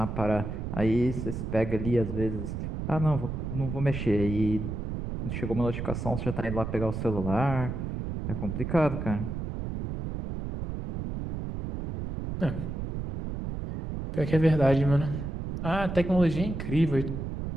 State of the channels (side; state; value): right; noise; rumble, 5 dB below the sound